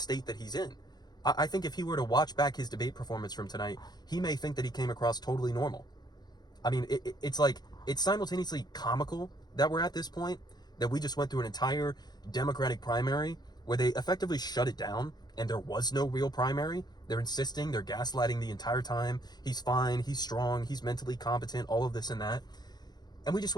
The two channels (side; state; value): right; late; 0.20 ms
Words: that he's in. I think if he were to watch back his debate performance from tonight, he may think that he came across totally normal. I mean, it's simultaneously comical that we're at this point, that we just went through an entire Democratic primary where they effectively shut it down and there was no real primary. They're insisting, they're gaslighting the entire time. He's fine, he's strong, he's mentally competent, all of this and that. And we just